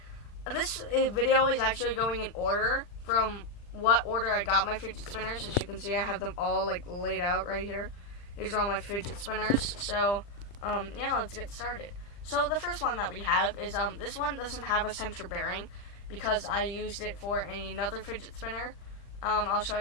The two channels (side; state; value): right; late; 40 ms